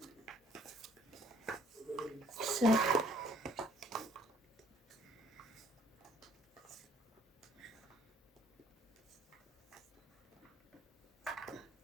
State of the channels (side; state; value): both; normal; correlation 0.60